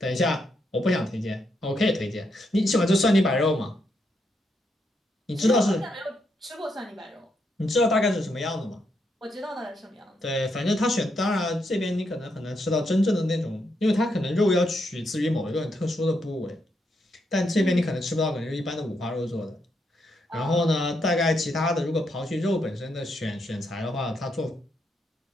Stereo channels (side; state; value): both; normal; correlation 0.79